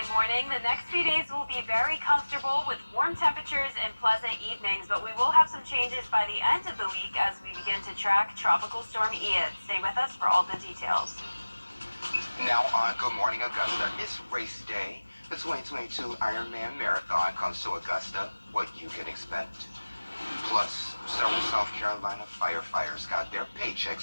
morning. The next few days will be very comfortable with warm temperatures and pleasant evenings, but we will have some changes by the end of the week as we begin to track Tropical Storm Ian. Stay with us for all the details. Now on Good Morning Augusta, it's race day. The 2022 Ironman Marathon comes to Augusta. What you can expect. Plus, several South Carolina firefighters got their paychecks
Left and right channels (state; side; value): inverted; both; correlation -1.00